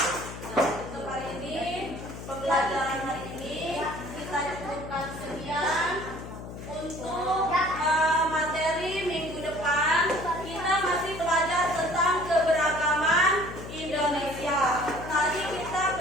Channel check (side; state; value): left; noise; hum, 11 dB below the sound